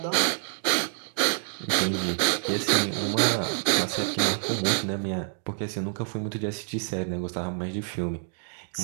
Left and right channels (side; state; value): left; silent; 60 dB below the other